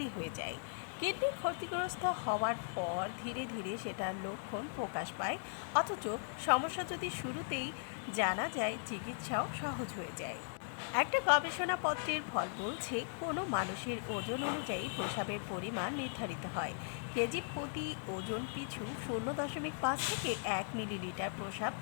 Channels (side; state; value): right; silent; digital silence